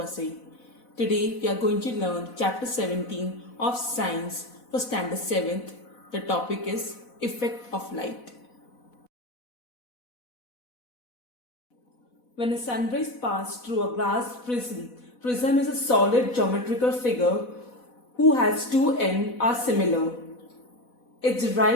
Today, we are going to learn Chapter 17 of Science for Standard 7th. The topic is Effect of Light. When a sunrays pass through a glass prism is a solid geometrical figure whose has two ends are similar. It's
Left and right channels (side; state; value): right; late; 4.1 ms